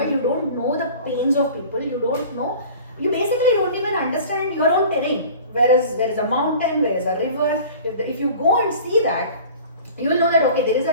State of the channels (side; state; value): both; inverted; correlation -0.42